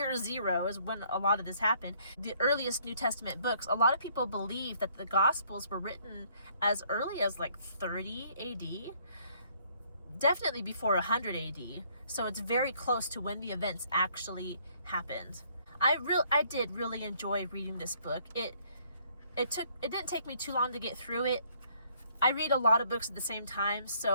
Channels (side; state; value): both; inverted; correlation -0.64